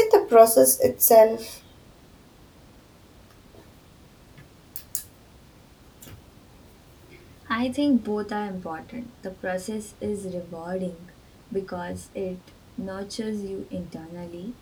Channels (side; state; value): both; identical; correlation 1.00